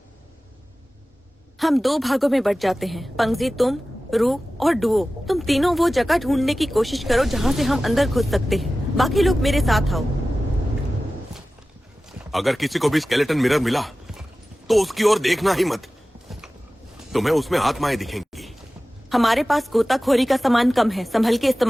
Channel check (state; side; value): normal; both; correlation 0.96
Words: हम 2 भागों में बट जाते हैं। पंगजी तुम, रू और डुओ। तुम तीनों वो जगह ढूंढने की कोशिश करो जहाँ से हम अंदर घुस सकते हैं। बाकी लोग मेरे साथ आओ। अगर किसी को भी स्केलेटन मिरर मिला तो उसकी ओर देखना ही मत। तुम्हें उसमें आत्माएं दिखेंगी। हमारे पास गोताखोरी का सामान कम है, संभल के